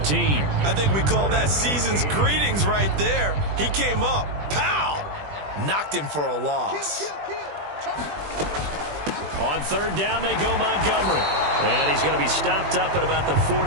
I think we call that season's greetings right there. He came up, pow, knocked him for a loss. On 3rd down, they go Montgomery. And he's going to be stopped up at about the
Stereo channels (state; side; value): late; left; 20 ms